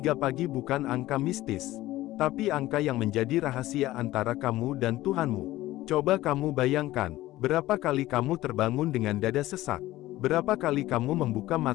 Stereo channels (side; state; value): right; quieter; 16.4 dB